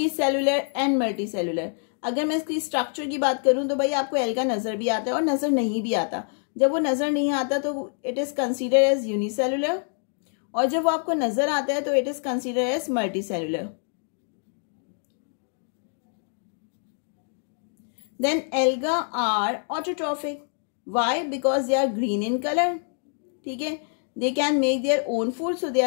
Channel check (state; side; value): silent; right; 61 dB below the other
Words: and multicellular. अगर मैं इसकी स्ट्रक्चर की बात करूं तो भाई आपको एल्गा नजर भी आता है और नजर नहीं भी आता। जब वो नजर नहीं आता तो it is consider as unicellular, और जब वो आपको नजर आता है तो it is consider as multicellular. Then alga are autotrophic. Why? Because they are green in color. ठीक है, they can make their own food, so they